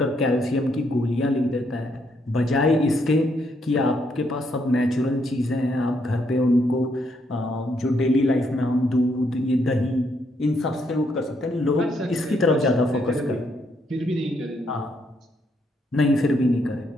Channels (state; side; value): normal; both; correlation 0.74